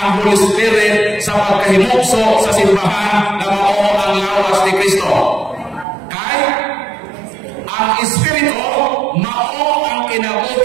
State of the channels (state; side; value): drops out; left; at 5.9 s